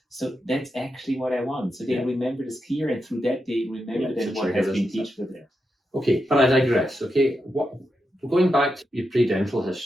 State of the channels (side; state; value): both; normal; correlation 0.86